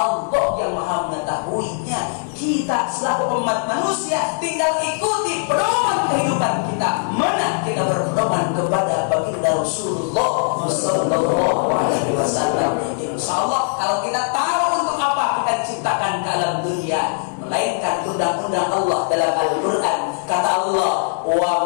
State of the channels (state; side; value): silent; right; 66 dB below the other